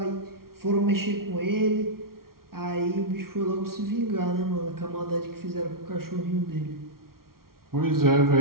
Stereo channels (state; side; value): late; left; 0.93 ms